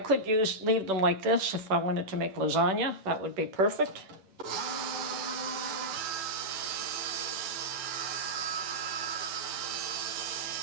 leave them like this if I wanted to make lasagna. That would be perfect.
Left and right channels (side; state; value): left; late; 10 ms